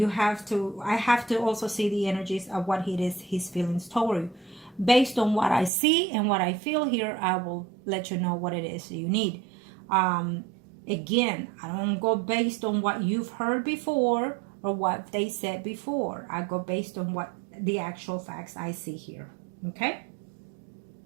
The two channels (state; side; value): drops out; left; at 5.7 s